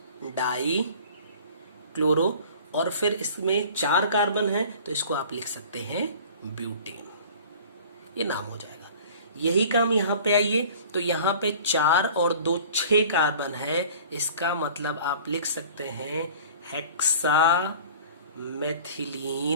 डाई क्लोरो, और फिर इसमें 4 कार्बन है तो इसको आप लिख सकते हैं ब्यूटेन। ये नाम हो जाएगा। यही काम यहाँ पे आइए तो यहाँ पे 4 और 2 6 कार्बन है, इसका मतलब आप लिख सकते हैं हेक्सा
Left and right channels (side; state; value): both; inverted; correlation -0.45